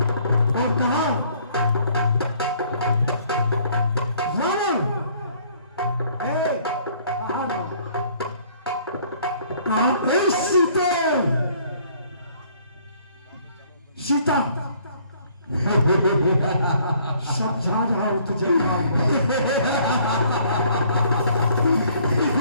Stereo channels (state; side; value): inverted; both; correlation -0.60